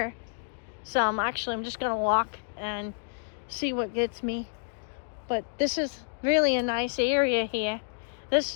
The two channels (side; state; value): right; silent; digital silence